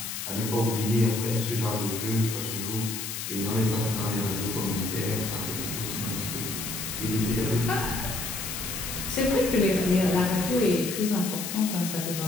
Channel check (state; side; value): noise; left; hiss, 5 dB below the sound